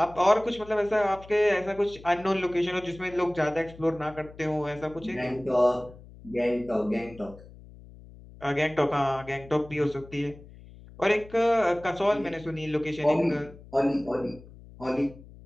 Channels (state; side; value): noise; left; hum, 20 dB below the sound